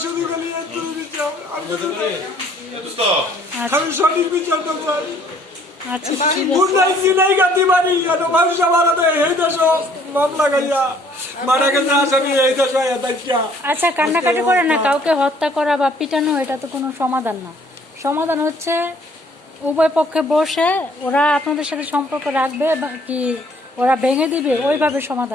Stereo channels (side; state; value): both; normal; correlation 0.60